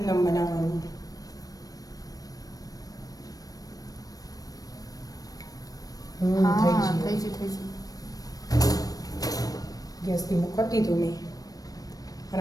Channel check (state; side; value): late; right; 0.18 ms